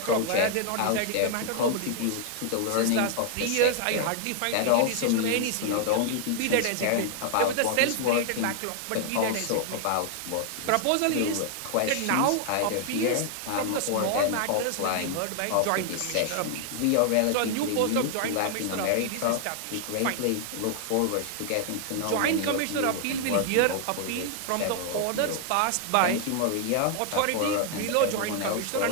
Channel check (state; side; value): different; both; correlation 0.00